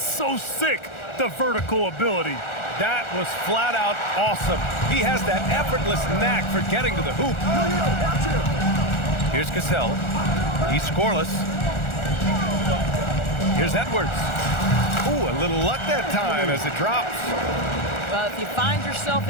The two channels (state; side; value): late; right; 1.4 ms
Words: sick, the vertical ability. That was flat out awesome. He has that effortless knack for getting to the hoop. Here's Cassell. He's scoreless. Here's Edwards. Ooh, a little luck that time as it drops. Well, if you find yourself